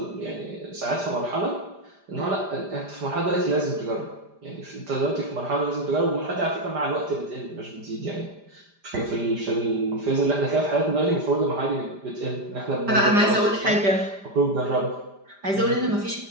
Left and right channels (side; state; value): left; late; 5.0 ms